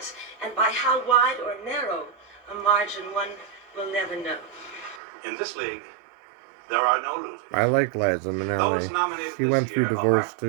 and by how wide or narrow a margin one will never know. In this league, there are no losers. I like Liza Those Minnelli. nominated She this went through year divorce are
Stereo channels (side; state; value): left; drops out; at 5.0 s